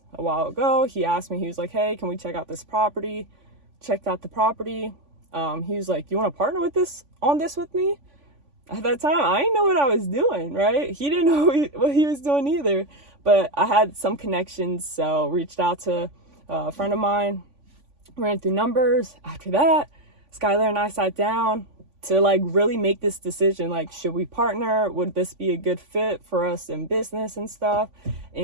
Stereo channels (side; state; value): left; late; 3.5 ms